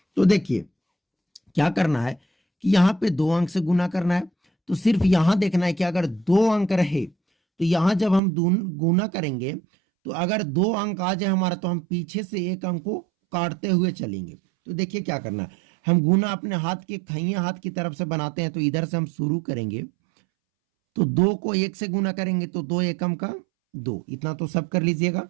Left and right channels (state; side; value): drops out; left; at 8.2 s